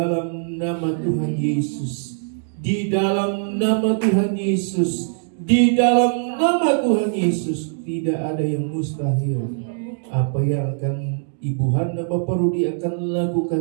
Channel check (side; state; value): left; silent; digital silence